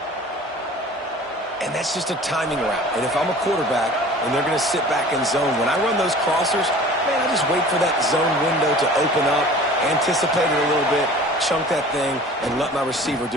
And that's just a timing route. And if I'm a quarterback and they're going to sit back in zone, when I run those crossers, man, I just wait for that zone window to open up, anticipate it a little bit, chunk that thing, and let my receiver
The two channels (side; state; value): both; normal; correlation 0.44